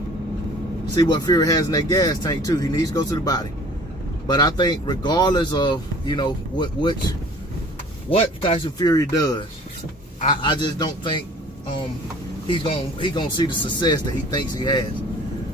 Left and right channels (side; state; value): both; normal; correlation 0.49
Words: see what Fury has in that gas tank too. He needs to go to the body. But I think regardless of, you know, what Tyson Fury does, I just don't think he's gonna see the success that he thinks he has.